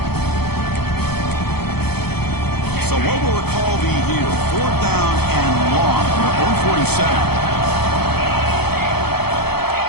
So what will the call be here? Fourth down and long from their own 47.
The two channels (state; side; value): late; right; 0.96 ms